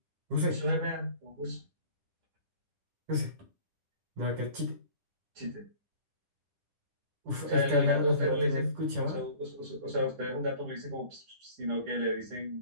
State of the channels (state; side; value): late; left; 10 ms